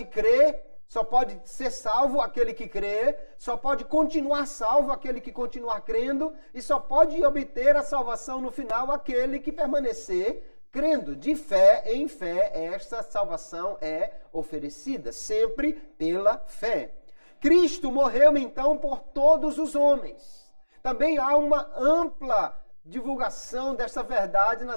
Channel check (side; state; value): both; inverted; correlation -1.00